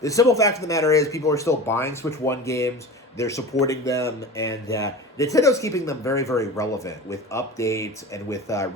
The simple fact of the matter is people are still buying Switch 1 games. They're supporting them, and Nintendo's keeping them very, very relevant with updates and with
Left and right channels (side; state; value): both; normal; correlation 0.33